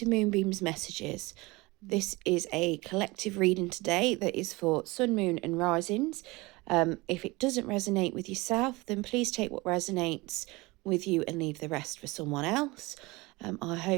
Moonbeam's Messages. This is a collective reading today that is for Sun, Moon and Risings. If it doesn't resonate with yourself, then please take what resonates with you and leave the rest for someone else. I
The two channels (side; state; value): left; quieter; 23.0 dB